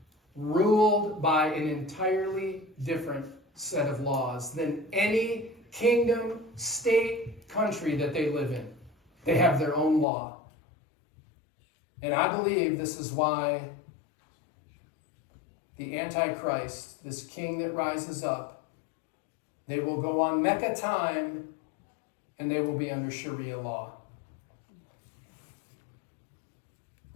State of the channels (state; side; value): drops out; right; at 10.1 s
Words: ruled by an entirely different set of laws than any kingdom, state, country that they live in. They have their own law. And I believe this is why the Antichrist, this king that rises up, they will go on Mecca time and they will be under Sharia law.